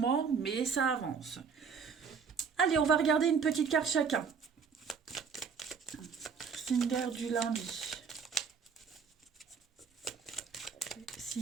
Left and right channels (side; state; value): left; quieter; 6.1 dB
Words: mais ça avance. Allez, on va regarder une petite carte chacun. Signe d'air du lundi.